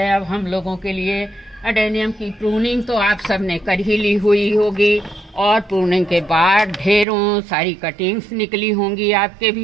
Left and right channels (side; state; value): left; drops out; at 7.1 s